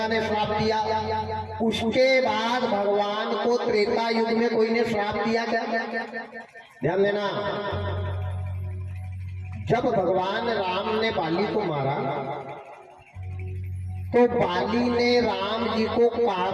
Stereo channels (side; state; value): both; identical; correlation 1.00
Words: ने श्राप दिया। उसके बाद भगवान को त्रेता युग में कोई ने श्राप दिया क्या? ध्यान देना। जब भगवान राम ने बाली को मारा तो बाली ने राम जी को